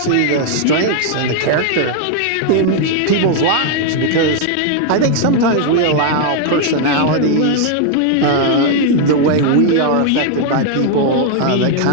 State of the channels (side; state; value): both; different; correlation 0.00